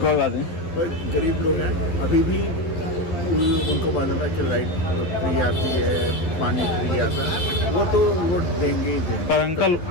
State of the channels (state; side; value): late; right; 11 ms